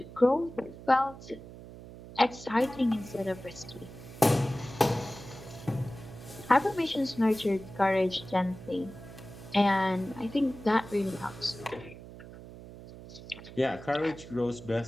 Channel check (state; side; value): noise; right; hum, 15 dB below the sound